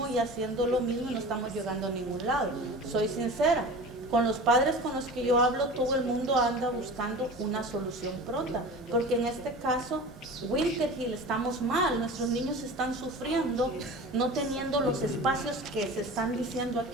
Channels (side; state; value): both; normal; correlation 0.36